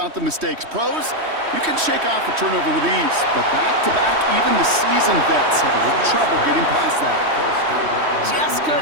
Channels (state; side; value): late; left; 3.1 ms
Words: the mistakes. Pros, you can shake off a turnover with ease, but back-to-back, even the seasoned vets have a little trouble getting past that. Just